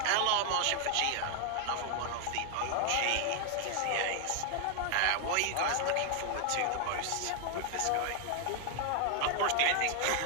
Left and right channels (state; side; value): different; both; correlation 0.00